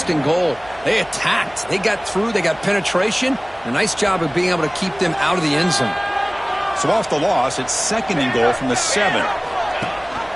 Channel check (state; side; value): noise; right; hum, 25 dB below the sound